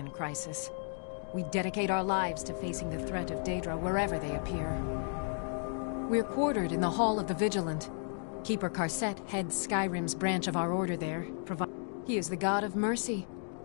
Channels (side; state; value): right; silent; 55 dB below the other